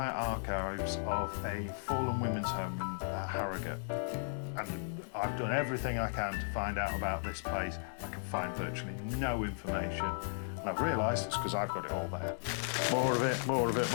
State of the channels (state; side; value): silent; right; digital silence